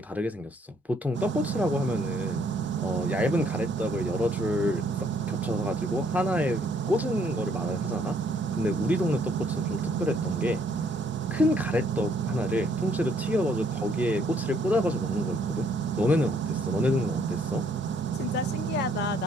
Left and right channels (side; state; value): both; normal; correlation 0.66